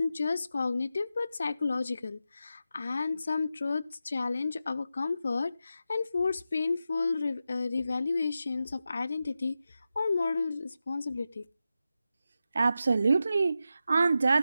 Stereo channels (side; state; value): both; inverted; correlation -0.90